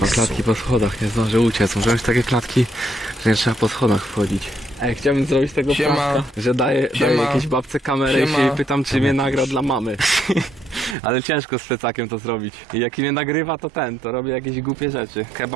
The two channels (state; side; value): drops out; left; at 11.0 s